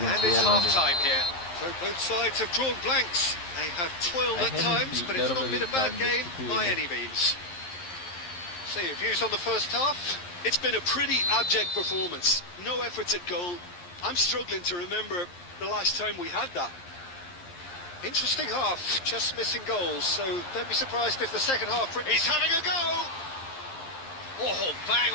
it's half-time here. So both sides have drawn blanks. They have toiled at times, but it's not been a bad game by any means. So your views on the first half? It's been a pretty abject performance. No efforts at goal. I'm struggling to remember the last time we had that. Interesting half, just missing goals, so don't be surprised if the second half... He's having a go! Oh, bang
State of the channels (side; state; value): right; late; 11 ms